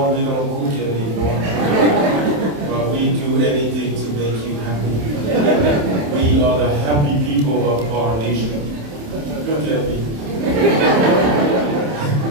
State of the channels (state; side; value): late; left; 27 ms